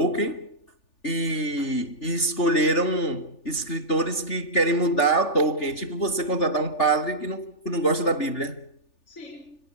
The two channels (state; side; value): late; right; 3.4 ms